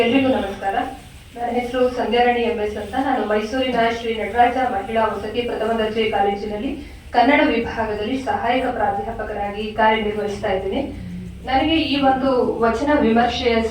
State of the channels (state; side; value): identical; both; correlation 1.00